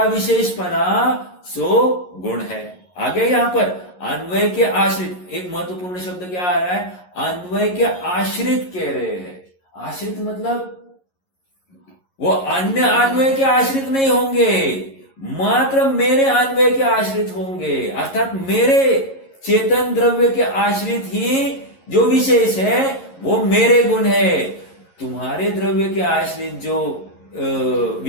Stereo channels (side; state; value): right; late; 11 ms